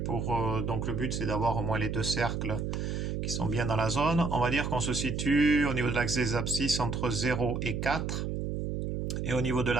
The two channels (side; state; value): right; noise; hum, 2 dB below the sound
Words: donc le but c'est d'avoir au moins les deux cercles qui sont bien dans la zone. On va dire qu'on se situe au niveau de l'axe des abscisses entre 0 et 4 et au niveau de